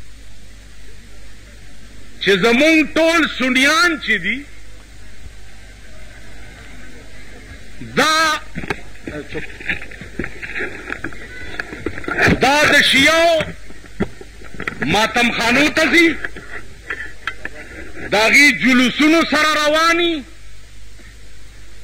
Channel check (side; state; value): both; identical; correlation 1.00